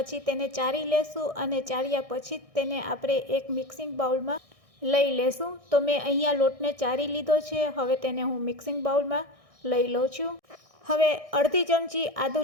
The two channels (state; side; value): late; left; 1.6 ms